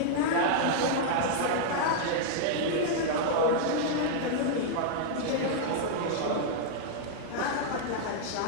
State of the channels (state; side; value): different; both; correlation -0.01